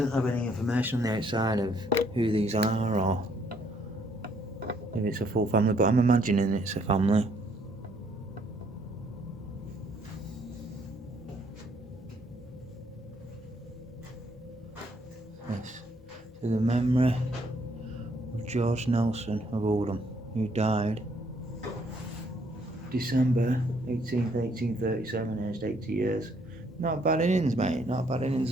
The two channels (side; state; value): both; normal; correlation 0.67